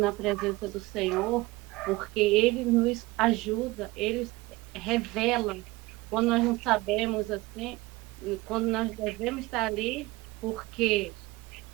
presença do Senhor, porque Ele nos ajuda, Ele revela quando nós não sabemos assim, quando nós devemos estar ali, porque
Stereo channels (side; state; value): left; quieter; 20.9 dB